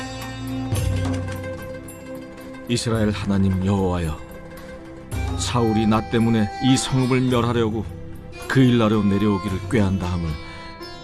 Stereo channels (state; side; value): identical; both; correlation 1.00